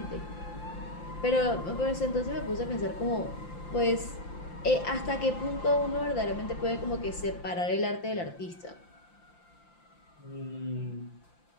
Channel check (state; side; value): late; right; 5.8 ms